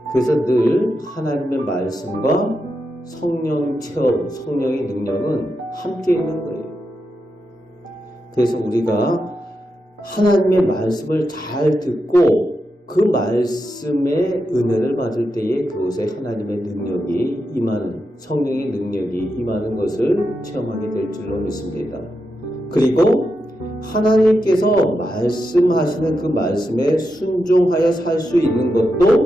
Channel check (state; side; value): normal; both; correlation 0.86